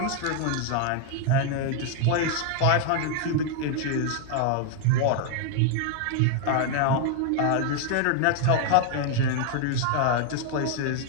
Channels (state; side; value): different; both; correlation 0.00